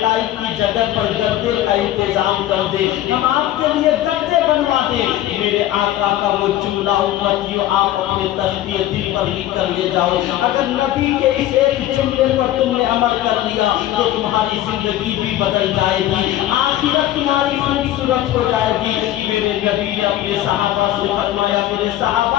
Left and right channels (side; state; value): right; quieter; 13.5 dB